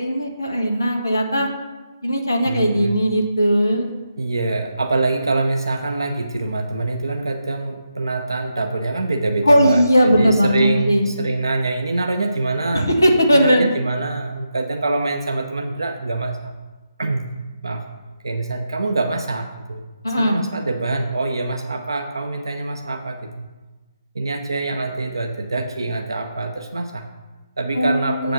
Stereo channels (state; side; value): inverted; both; correlation -0.85